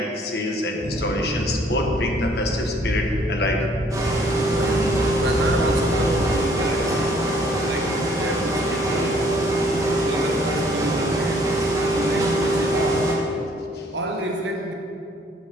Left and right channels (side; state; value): both; normal; correlation 0.61